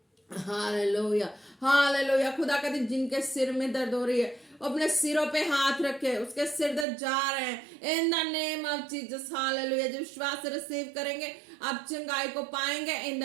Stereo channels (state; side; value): drops out; left; at 6.9 s